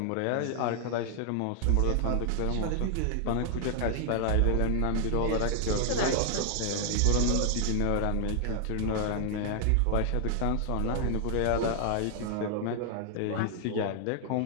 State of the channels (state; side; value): different; both; correlation 0.00